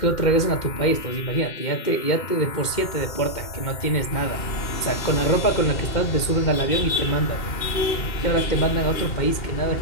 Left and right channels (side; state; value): right; late; 2.1 ms